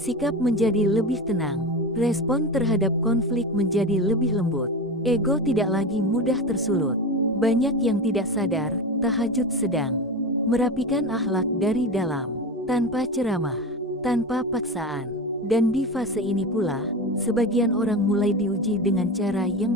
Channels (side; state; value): both; normal; correlation 0.24